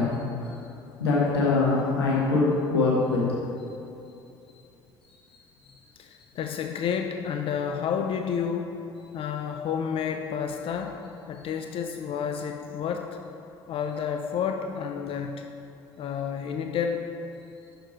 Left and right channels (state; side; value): quieter; right; 4.4 dB